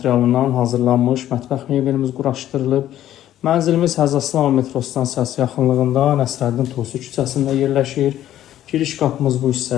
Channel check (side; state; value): right; quieter; 12.4 dB